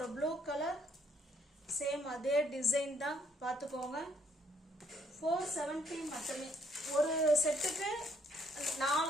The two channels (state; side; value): normal; both; correlation 0.67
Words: ப்ளூ கலர், சேம் அதே டிசைன் தான், பார்த்துக்கோங்க. 470 மட்டுமே. ஒரு செட்டுக்கு 4